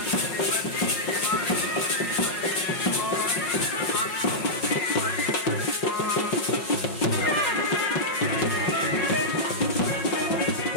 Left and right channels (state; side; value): late; right; 5.4 ms